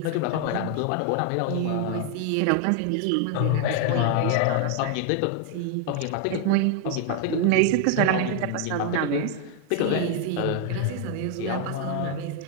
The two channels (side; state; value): both; different; correlation 0.00